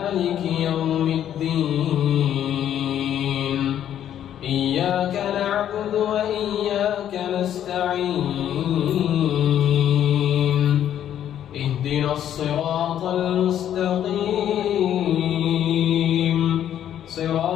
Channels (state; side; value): quieter; right; 10.5 dB